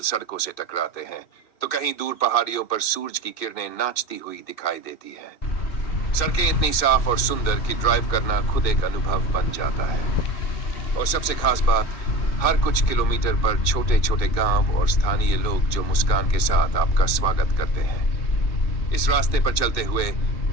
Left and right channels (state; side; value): late; right; 2.6 ms